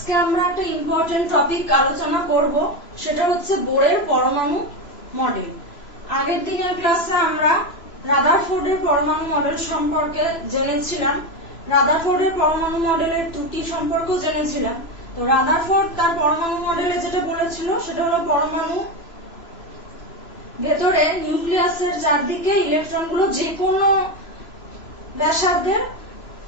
আমরা একটা ইম্পর্টেন্ট টপিক আলোচনা করব, সেটা হচ্ছে বোরের পরমাণু মডেল। আগের দিনের ক্লাসে আমরা রাদারফোর্ডের পরমাণু মডেল সম্পর্কে জেনেছিলাম, রাদারফোর্ডের পরমাণু মডেলের ত্রুটি সম্পর্কেও জেনেছিলাম। তো রাদারফোর্ড তার পরমাণু মডেলে যেটা বলেছিল সেটা হলো পরমাণু ভেতরে নিউক্লিয়াসের চারদিকে ইলেকট্রনগুলো যে কোনো ব্যাসার্ধের,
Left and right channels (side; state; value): right; late; 3.0 ms